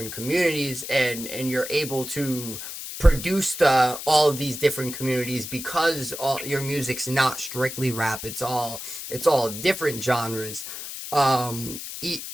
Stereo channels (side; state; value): left; noise; hiss, 9 dB below the sound